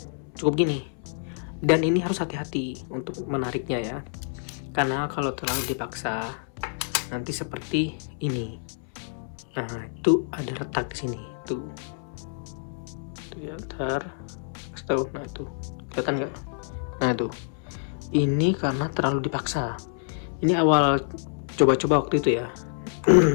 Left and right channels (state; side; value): silent; right; 59 dB below the other